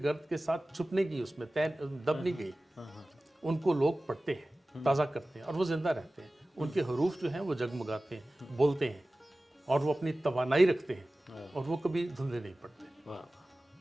के साथ छुपने की, उसमें तय दब नहीं गई। उनको लोग पढ़ते हैं, ताज़ा करते हैं और वो ज़िंदा रहते हैं। उनके हरूफ जो हैं वो जगमगाते हैं, बोलते हैं और वो अपनी तवानाई रखते हैं और वो कभी धुंधले नहीं पड़ते। वाह,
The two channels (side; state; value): both; normal; correlation 0.97